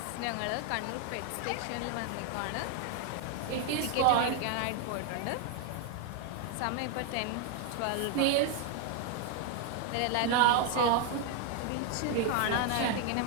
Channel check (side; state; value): both; different; correlation 0.01